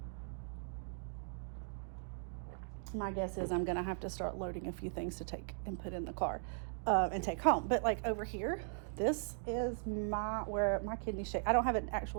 My guess is I'm going to have to start loading a few things to take and put in the car and take home. But like over here, this is where my kidney shape. I don't have an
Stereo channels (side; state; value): left; silent; digital silence